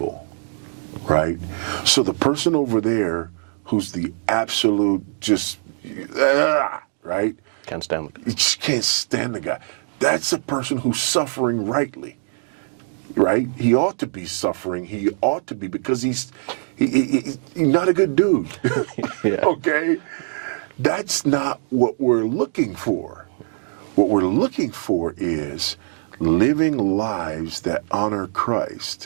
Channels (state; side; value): silent; left; digital silence